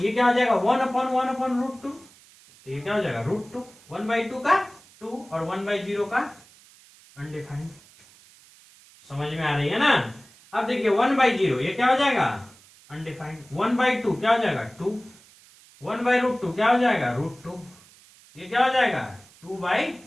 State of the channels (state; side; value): noise; right; hiss, 25 dB below the sound